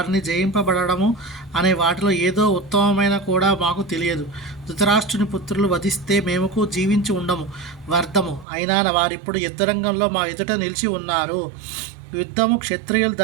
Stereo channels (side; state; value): left; drops out; at 8.5 s